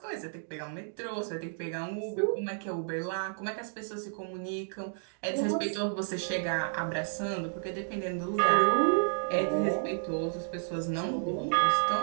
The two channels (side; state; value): left; silent; digital silence